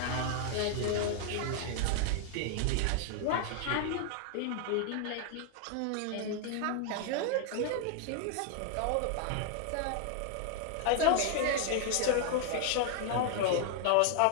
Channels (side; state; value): both; different; correlation 0.00